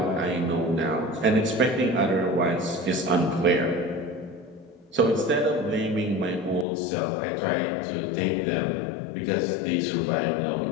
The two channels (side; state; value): right; drops out; at 6.7 s